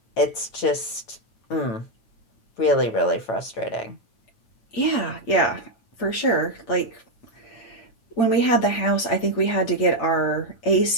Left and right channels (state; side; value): late; right; 9.0 ms